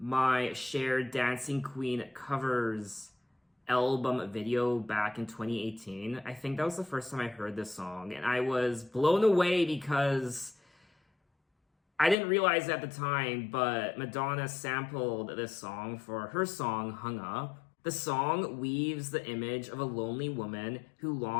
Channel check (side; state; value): right; drops out; at 12.2 s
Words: shared Dancing Queen covers album video back in 2018. I think that was the first time I heard this song, and I was blown away because I didn't realize at the time, but Madonna sampled this song for her song Hung Up. The song weaves the image of a lonely woman who